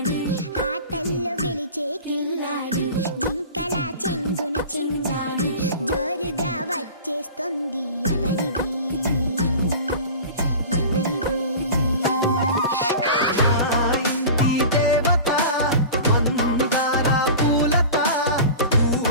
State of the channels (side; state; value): both; inverted; correlation -0.36